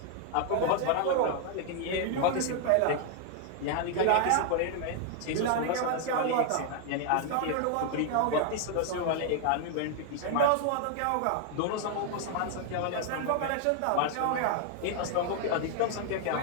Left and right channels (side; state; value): both; different; correlation 0.00